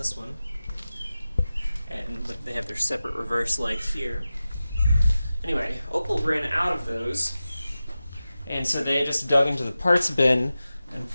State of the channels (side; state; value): both; inverted; correlation -0.94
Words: one, and they have their separate reverse light here. Anyway, Opel ran out of those, and so they just dug into the parts bin and